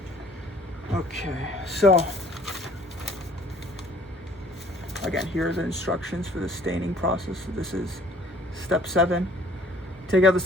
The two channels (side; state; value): both; normal; correlation 0.55